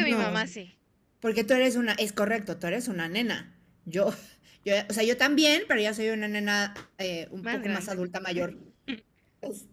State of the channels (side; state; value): both; identical; correlation 1.00